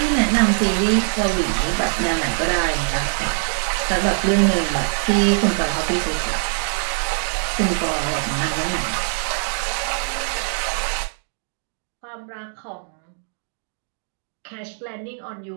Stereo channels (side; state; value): left; silent; digital silence